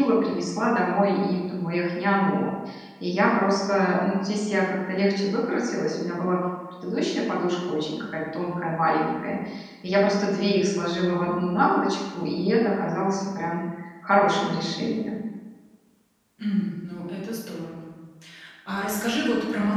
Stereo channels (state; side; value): identical; both; correlation 1.00